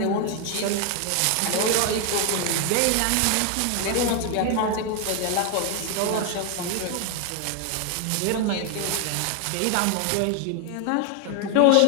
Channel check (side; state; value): both; different; correlation 0.01